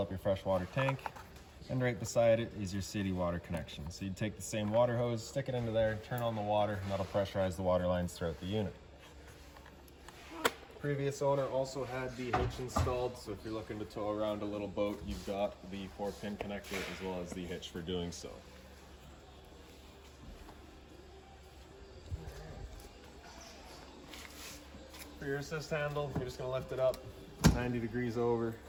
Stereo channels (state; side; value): identical; both; correlation 1.00